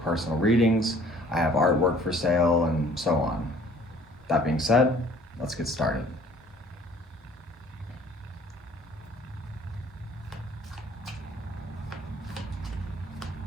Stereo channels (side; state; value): both; normal; correlation 0.54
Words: personal readings. I have artwork for sale and so on. That being said, let's get started.